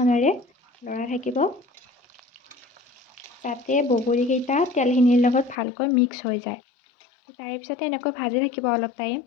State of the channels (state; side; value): drops out; right; at 5.6 s